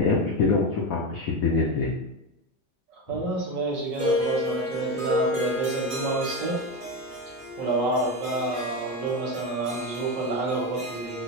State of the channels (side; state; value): both; normal; correlation 0.15